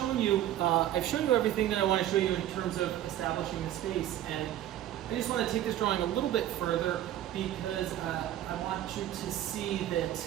you everything that I want to show you in terms of establishing the space, and I just want to take this drawing a little bit further because I want you to see that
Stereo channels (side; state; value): left; quieter; 12.4 dB